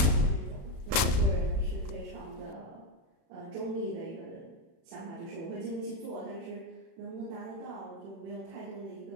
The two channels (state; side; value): late; left; 36 ms